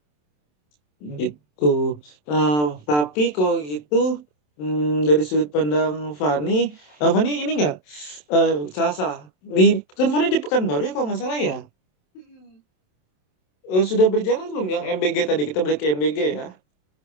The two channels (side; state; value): right; late; 27 ms